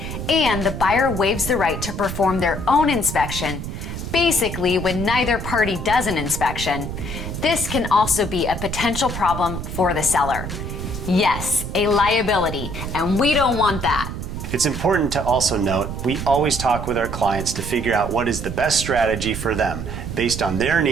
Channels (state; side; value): noise; right; rumble, 6 dB below the sound